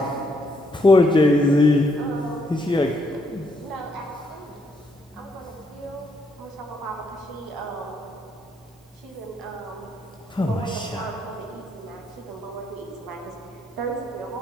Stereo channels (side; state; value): both; normal; correlation 0.74